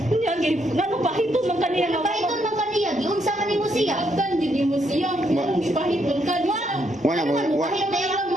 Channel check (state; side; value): normal; both; correlation 0.75